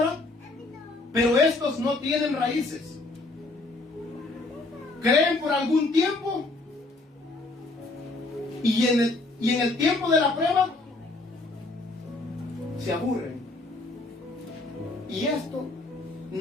pero estos no tienen raíces. Creen por algún tiempo y en el tiempo de la prueba se aburren. Y esto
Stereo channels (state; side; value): quieter; right; 3.1 dB